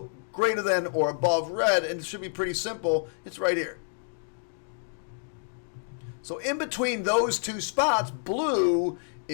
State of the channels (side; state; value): right; silent; digital silence